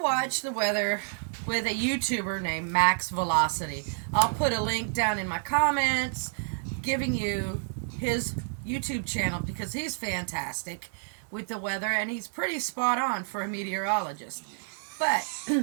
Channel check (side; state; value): left; silent; digital silence